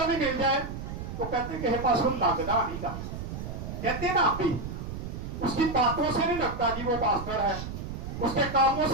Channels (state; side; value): noise; right; rumble, 7 dB below the sound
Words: بھی مل جائے تو کہتے ہیں کہ پاس وہ لگتا نہیں کا، کہتے ہیں نا ہم بھی. اس کی باتوں سے نہیں لگتا جی وہ پاسٹر ہے، اس کے کاموں